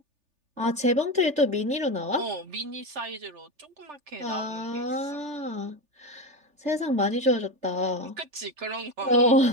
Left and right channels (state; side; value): late; left; 3.4 ms